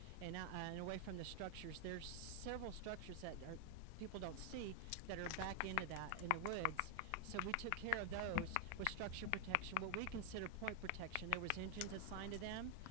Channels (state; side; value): different; both; correlation 0.00